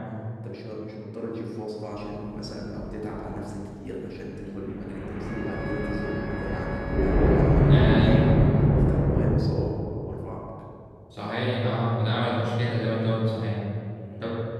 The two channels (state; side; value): identical; both; correlation 1.00